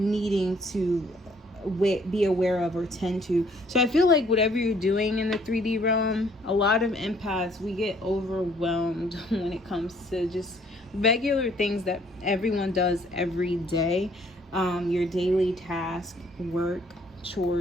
to be aware of or tend to. So I feel like whatever you're doing in the 3D realm, a lot of empaths, we get overwhelmed when it comes to just regular things that everyone does every day. Your daily task, work,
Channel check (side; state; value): both; normal; correlation 0.62